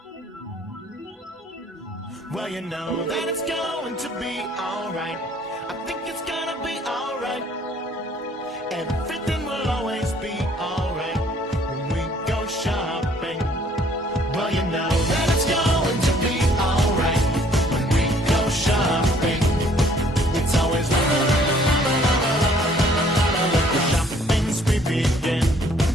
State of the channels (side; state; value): both; normal; correlation 0.60